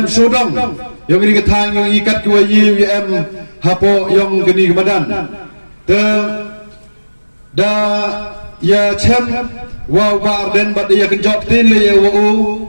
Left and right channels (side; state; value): both; inverted; correlation -1.00